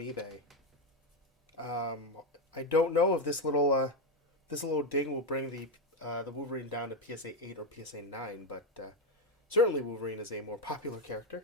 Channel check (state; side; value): normal; both; correlation 0.07